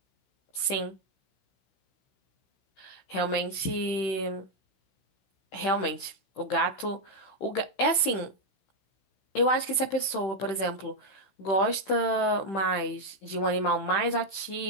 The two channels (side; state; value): right; late; 16 ms